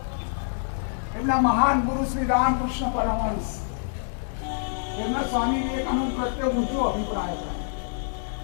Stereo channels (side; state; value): right; silent; 60 dB below the other